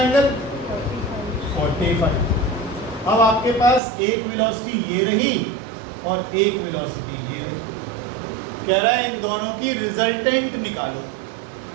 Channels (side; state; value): left; drops out; at 3.8 s